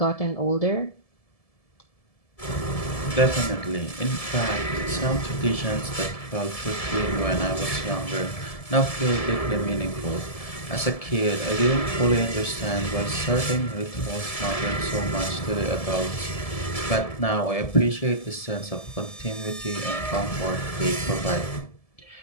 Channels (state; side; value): late; right; 1.7 ms